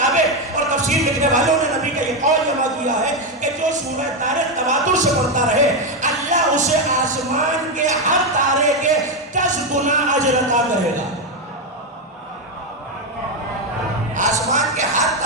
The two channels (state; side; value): normal; both; correlation 0.08